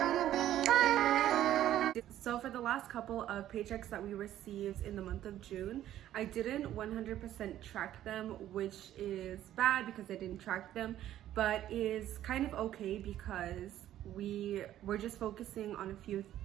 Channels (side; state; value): left; quieter; 12.4 dB